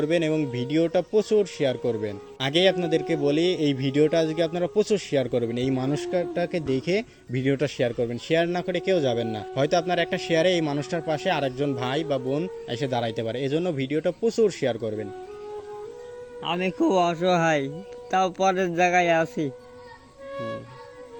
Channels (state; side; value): identical; both; correlation 1.00